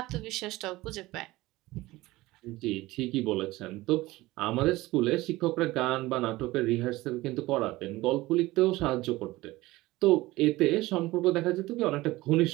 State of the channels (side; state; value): left; quieter; 19.0 dB